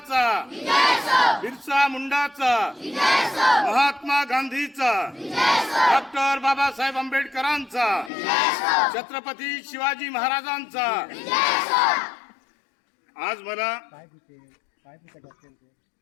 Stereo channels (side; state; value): right; drops out; at 8.1 s